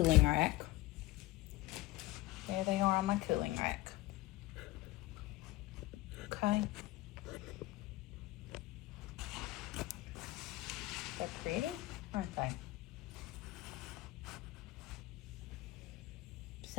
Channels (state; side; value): quieter; right; 18.0 dB